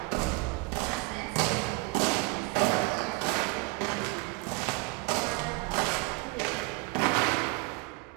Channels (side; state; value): left; quieter; 24.9 dB